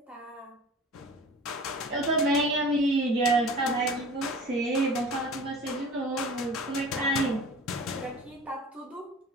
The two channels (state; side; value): normal; both; correlation 0.41